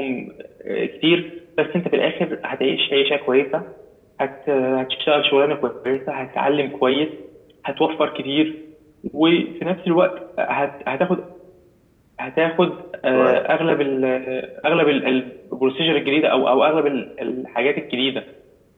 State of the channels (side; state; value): both; identical; correlation 1.00